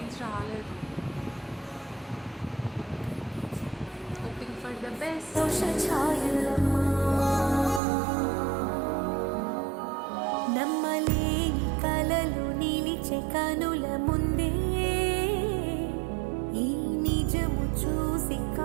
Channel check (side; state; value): left; drops out; at 7.8 s